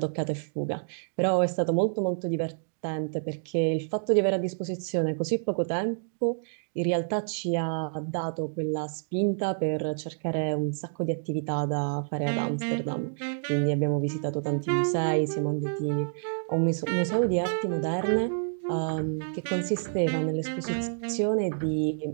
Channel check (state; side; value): silent; left; digital silence